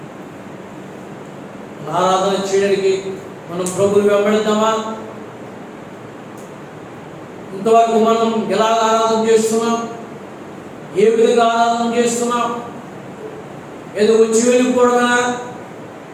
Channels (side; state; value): both; identical; correlation 1.00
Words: ఆరాధన చేయడానికి మనం ప్రభుని వెంబడిద్దామా? ఇంతవరకు మనం ఎలా ఆరాధన చేస్తున్నాం? ఏ విధంగా ఆరాధన చేస్తున్నాం? ఏదో వచ్చి వెళ్ళిపోవడమేనా?